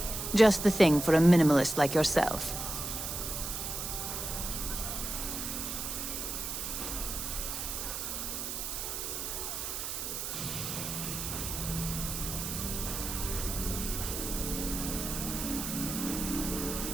Just the thing for a minimalist like yourself.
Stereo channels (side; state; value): right; noise; hiss, 4 dB below the sound